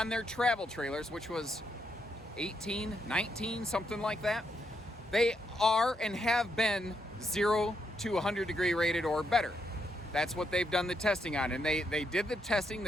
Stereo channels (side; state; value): both; normal; correlation 0.79